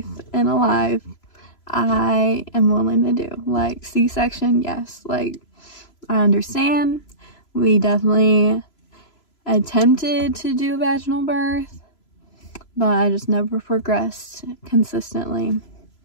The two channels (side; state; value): right; late; 3.0 ms